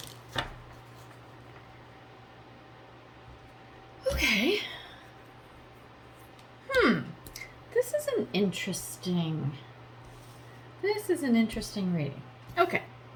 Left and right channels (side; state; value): both; identical; correlation 1.00